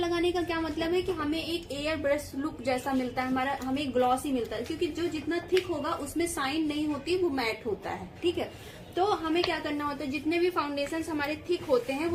का क्या मतलब है कि हमें एक एयर ब्रश लुक जैसा मिलता है, हमारा हमें ग्लॉसी मिलता है, क्योंकि जो जितना थिक होगा उसमें शाइन नहीं होती, वो मैट होता है, ठीक है। तो हमें क्या करना होता है, जितने भी फाउंडेशंस हमारे थिक होते हैं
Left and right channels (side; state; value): both; identical; correlation 1.00